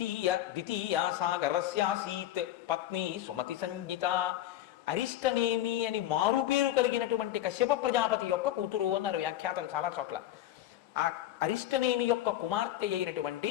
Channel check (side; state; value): right; quieter; 13.1 dB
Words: సాగరస్యాసీత్ పత్ని సుమతి సంజ్ఞిత. అరిష్టనేమి అని మారుపేరు కలిగినటువంటి కశ్యప ప్రజాపతి యొక్క కూతురు అన్నారు వ్యాఖ్యాతలు చాలా చోట్ల. ఆ అరిష్టనేమి యొక్క కుమార్తె అయినటువంటి